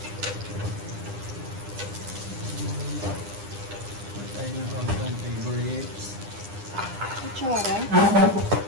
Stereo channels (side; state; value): left; late; 9.9 ms